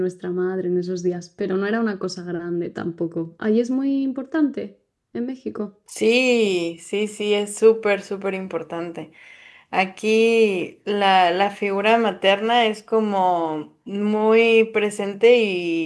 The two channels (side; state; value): both; identical; correlation 1.00